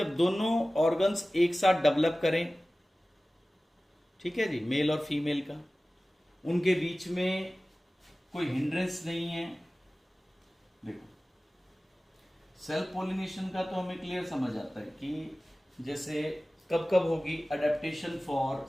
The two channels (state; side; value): normal; both; correlation 0.97